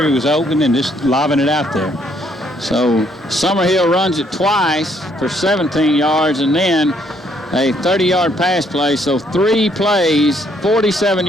he was open, and just lobbing it out there. So Summerhill runs it twice for 17 yards, and then a 30-yard pass play. So 3 plays, 47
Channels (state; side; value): normal; both; correlation 0.69